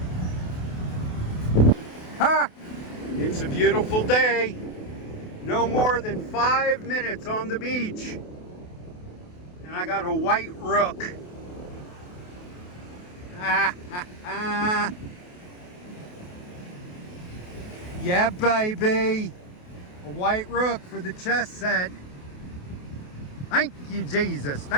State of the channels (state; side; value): late; right; 28 ms